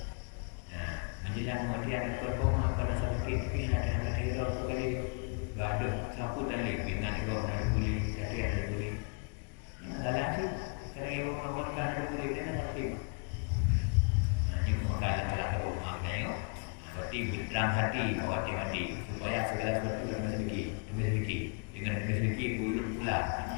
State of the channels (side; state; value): right; quieter; 38.6 dB